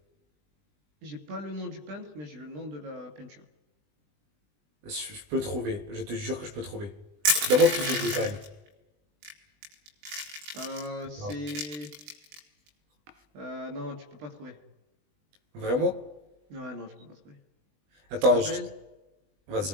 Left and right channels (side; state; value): left; late; 20 ms